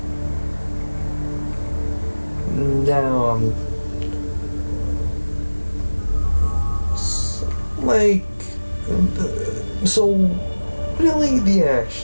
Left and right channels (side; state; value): both; inverted; correlation -1.00